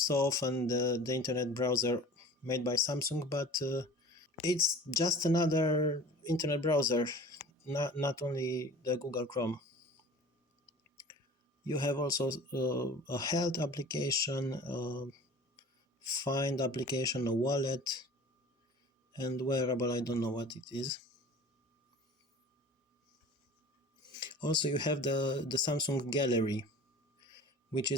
often the internet browser made by Samsung, but it's just another internet browser, not only the Google Chrome. You have also a health application, find application, a wallet, and wearable. I don't know what it is. Also, you have the Samsung Gallery, which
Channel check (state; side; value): normal; both; correlation 0.42